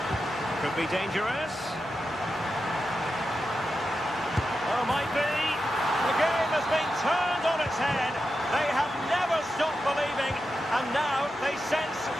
Could be dangerous. Oh, might be. The game has been turned on its head. They have never stopped believing, and now they sense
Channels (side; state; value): both; normal; correlation 0.89